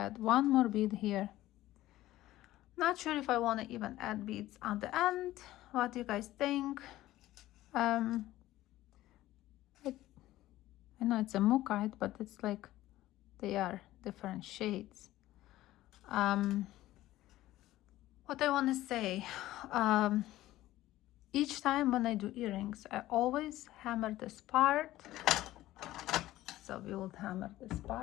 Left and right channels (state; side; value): quieter; right; 15.6 dB